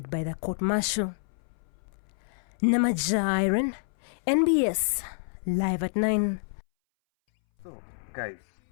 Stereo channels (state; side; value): silent; right; 59 dB below the other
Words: by the court-martial. Namaja Iron, NBS, live at 9. So, guys,